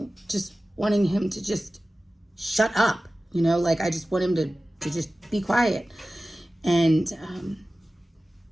just wanting him to just shut up, I just want him to just be quiet. And,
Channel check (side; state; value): both; normal; correlation 0.96